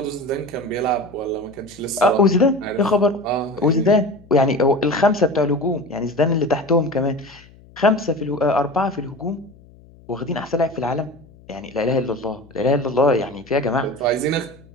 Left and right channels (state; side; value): noise; left; hum, 25 dB below the sound